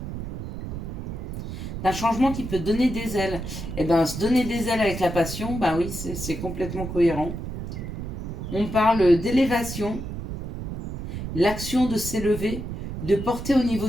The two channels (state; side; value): noise; right; rumble, 7 dB below the sound